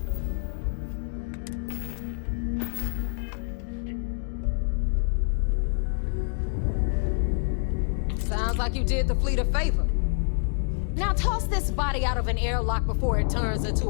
Sounds like you did the fleet a favor. Now toss this body out of an airlock before it turns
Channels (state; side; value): silent; right; digital silence